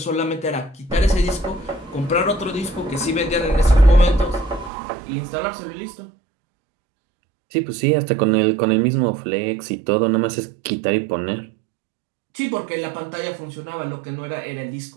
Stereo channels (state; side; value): drops out; left; at 4.7 s